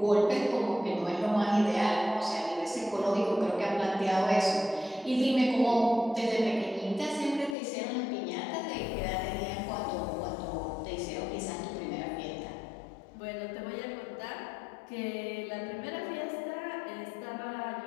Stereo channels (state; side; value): drops out; right; at 7.6 s